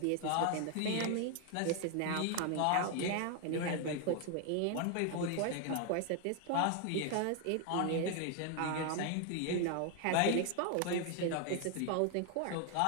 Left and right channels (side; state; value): both; different; correlation 0.00